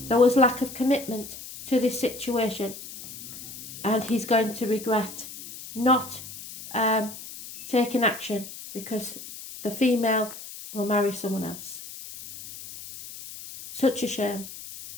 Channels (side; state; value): left; noise; hiss, 13 dB below the sound